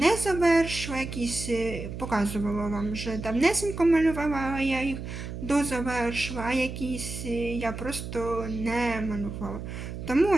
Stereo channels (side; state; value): right; noise; hum, 8 dB below the sound